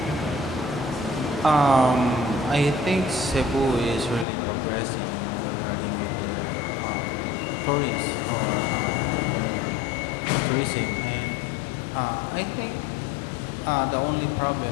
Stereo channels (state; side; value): drops out; right; at 4.2 s